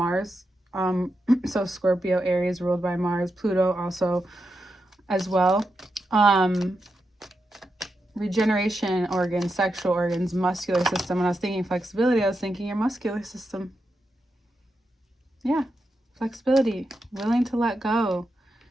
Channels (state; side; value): normal; both; correlation 0.87